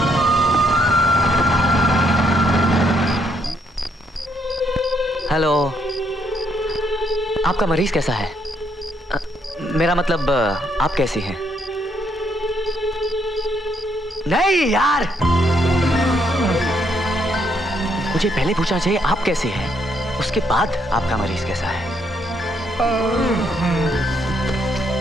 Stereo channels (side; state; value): both; normal; correlation 0.73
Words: हेलो, आपका मरीज कैसा है? मेरा मतलब आप कैसी हैं? नहीं यार, मुझे पहले पूछना चाहिए आप कैसे हैं, उसके बाद आपका मरीज कैसा है।